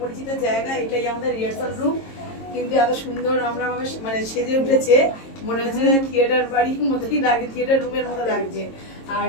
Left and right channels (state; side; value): late; right; 22 ms